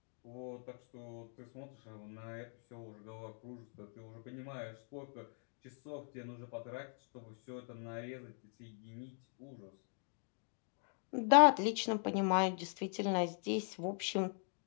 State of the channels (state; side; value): silent; right; 51 dB below the other